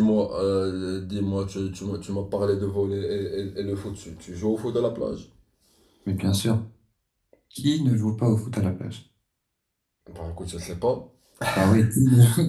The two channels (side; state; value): both; identical; correlation 1.00